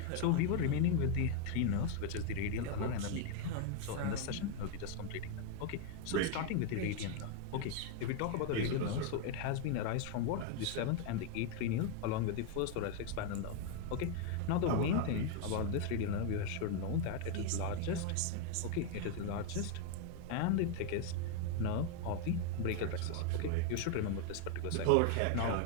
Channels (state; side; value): different; both; correlation 0.01